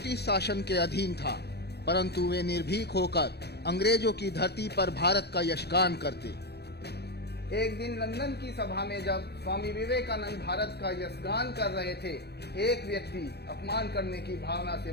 शासन के अधीन था, परंतु वे निर्भीक होकर अंग्रेजों की धरती पर भारत का यशगान करते। एक दिन लंदन की सभा में जब स्वामी विवेकानंद भारत का यशगान कर रहे थे, एक व्यक्ति अपमान करने की भावना से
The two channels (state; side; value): late; right; 0.48 ms